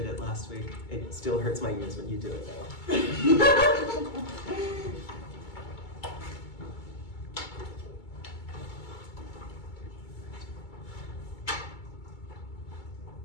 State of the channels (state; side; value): late; right; 2.2 ms